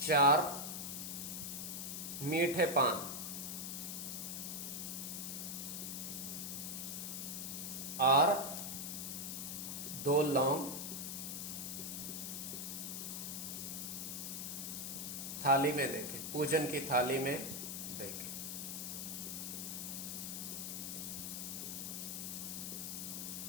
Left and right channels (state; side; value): noise; left; hiss, 4 dB below the sound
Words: 4 मीठे पान और 2 लौंग थाली में देखे, पूजन की थाली में देखे।